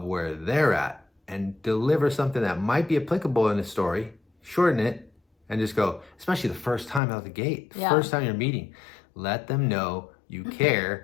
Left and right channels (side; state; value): right; drops out; at 7.0 s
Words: where they're at and deliver something that might be applicable in the story, shorten it, and just go, especially the first time out the gate, first time you're meeting, let them know you